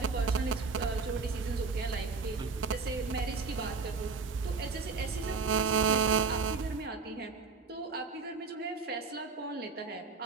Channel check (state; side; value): quieter; left; 4.6 dB